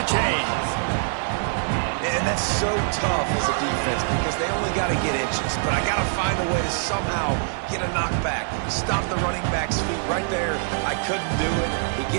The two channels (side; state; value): left; silent; digital silence